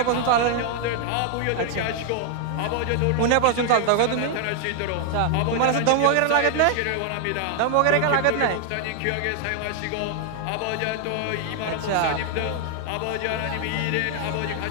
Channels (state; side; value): different; both; correlation 0.00